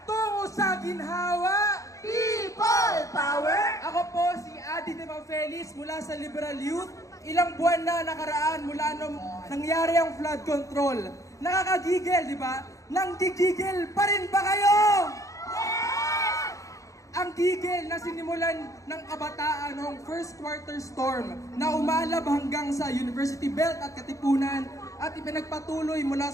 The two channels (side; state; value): right; late; 0.16 ms